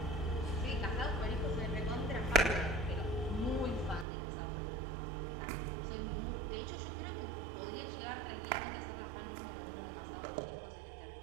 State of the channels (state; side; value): drops out; left; at 4.0 s